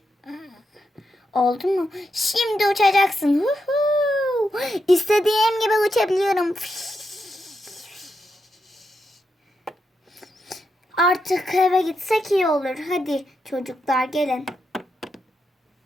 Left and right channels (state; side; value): normal; both; correlation 0.84